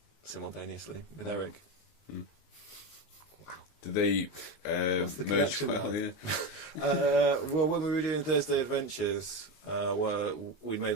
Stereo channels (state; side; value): late; right; 19 ms